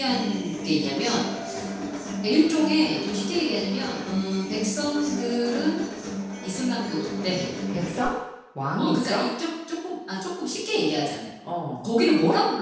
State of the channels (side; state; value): both; identical; correlation 1.00